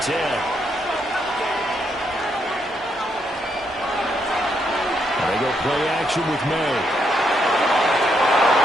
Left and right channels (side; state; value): both; normal; correlation 0.77